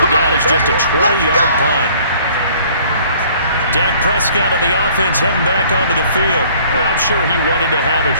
down as just a 20-yard punt. Dak Prescott on the offense heading back onto the field. I'm sure he wanted to have a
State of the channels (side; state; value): both; inverted; correlation -0.56